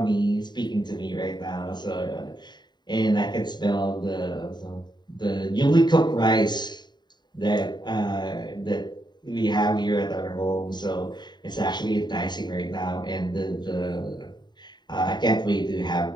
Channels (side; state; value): right; late; 0.21 ms